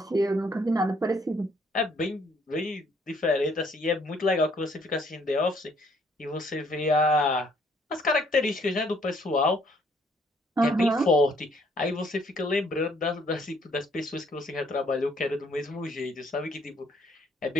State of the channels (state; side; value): normal; both; correlation 0.65